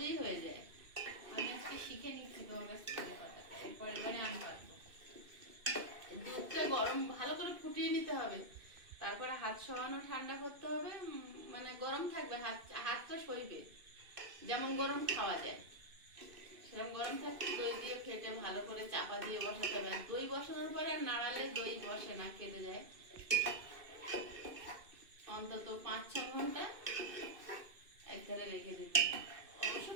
হয়ে যায়। আমি আজকে শিখে নিচ্ছি তোমার কাছ থেকে কথাটা, এরপর এবারে আমি পারবো। দুধটা গরম ভালো করে ফুটিয়ে নিতে হবে, তারপরে হাত সরানো ঠান্ডা করতে হবে। মানে গরম থাকবে, হাতটা সইবে। যেমন গরম খাওয়া যায় সেরকম গরম থাকতে দই দিয়ে ফেটে ভালো করে চাপা দিয়ে বসাতে হবে। দই বসানোর পরে আর নাড়ালে দই বসে না, কেটে যায়। অন্তত 5-6 ঘন্টা একধারে রেখে দিতে হবে। অবশ্য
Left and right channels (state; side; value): late; left; 2.6 ms